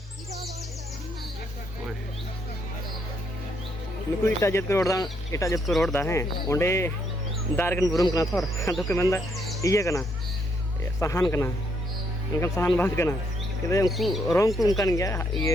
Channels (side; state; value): both; normal; correlation 0.73